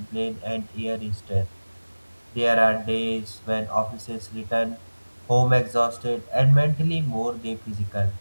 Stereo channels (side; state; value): both; inverted; correlation -1.00